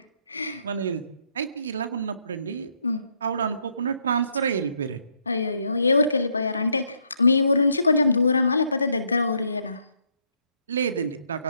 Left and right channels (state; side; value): inverted; both; correlation -0.75